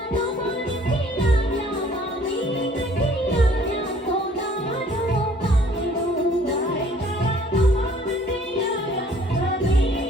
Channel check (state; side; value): normal; both; correlation 0.56